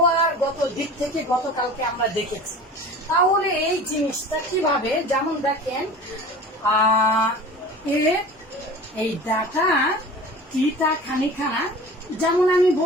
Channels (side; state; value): both; normal; correlation 0.39